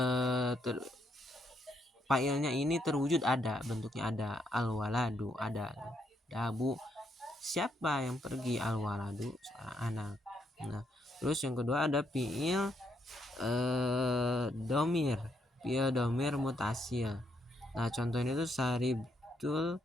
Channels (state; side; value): normal; both; correlation 0.75